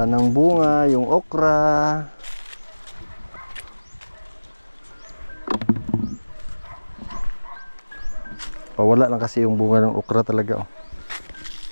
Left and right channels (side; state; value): both; inverted; correlation -1.00